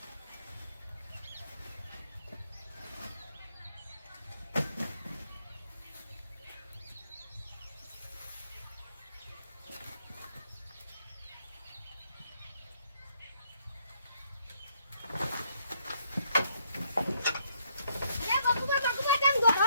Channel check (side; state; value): both; inverted; correlation -0.71